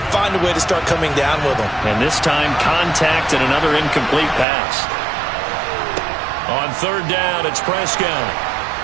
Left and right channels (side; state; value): left; drops out; at 4.5 s